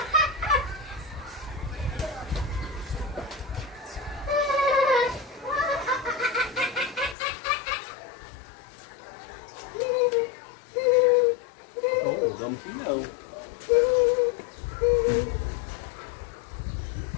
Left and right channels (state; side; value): drops out; right; at 7.2 s